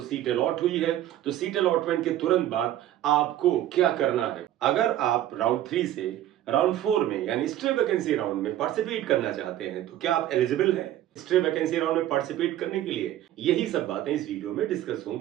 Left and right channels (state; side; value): quieter; left; 12.7 dB